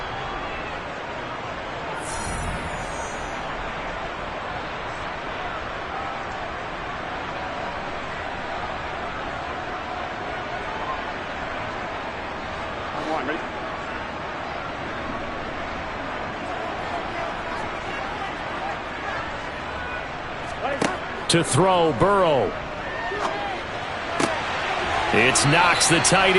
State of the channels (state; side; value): identical; both; correlation 1.00